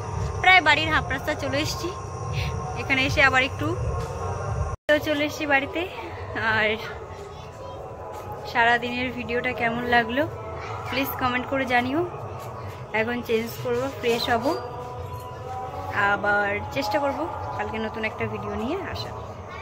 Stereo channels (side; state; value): both; identical; correlation 1.00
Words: প্রায় বাড়ির হাফ রাস্তা চলে এসেছি। এখানে এসে আবার একটু চলে এসেছি বাড়িতে। আর সারাদিনের ভিডিওটা কেমন লাগলো প্লিজ কমেন্ট করে জানিও। এখন চেঞ্জ করব, ফ্রেশ হব, আবার চেষ্টা করব কালকে নতুন একটা ভিডিও নিয়ে আসা।